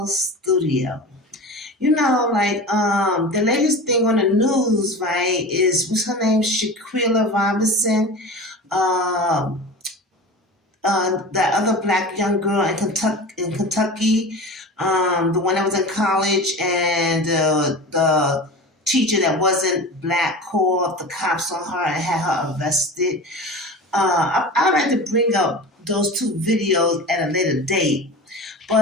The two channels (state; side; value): normal; both; correlation 0.33